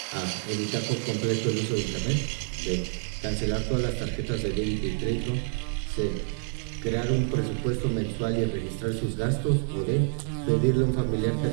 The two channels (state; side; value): silent; left; 60 dB below the other